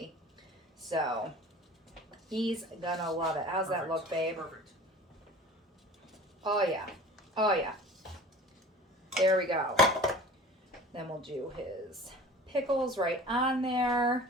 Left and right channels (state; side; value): normal; both; correlation 0.41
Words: So he's gonna love it. How's that look, babe? Perfect. Oh yeah, oh yeah. There we go. Then we'll do his pickles right on there.